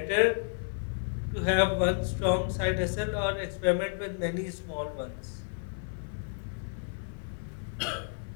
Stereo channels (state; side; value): silent; right; 57 dB below the other